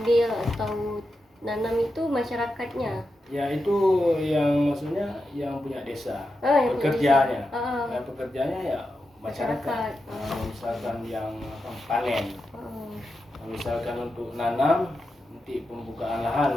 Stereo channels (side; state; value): both; normal; correlation 0.88